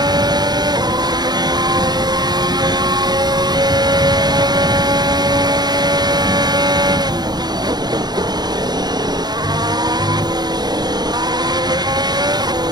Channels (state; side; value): late; left; 0.20 ms